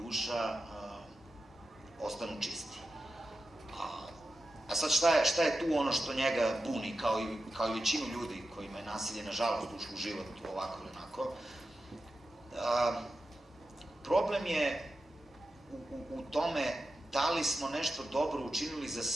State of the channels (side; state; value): both; normal; correlation 0.91